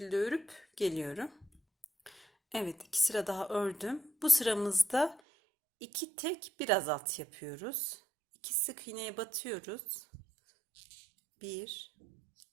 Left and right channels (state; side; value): drops out; left; at 5.2 s